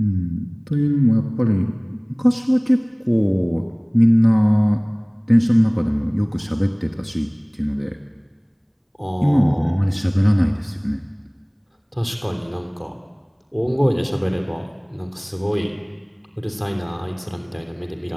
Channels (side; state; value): both; identical; correlation 1.00